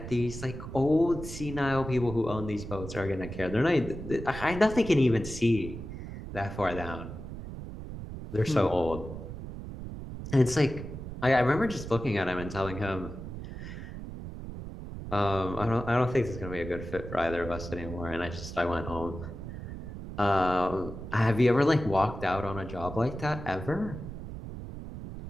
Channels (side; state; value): right; noise; rumble, 9 dB below the sound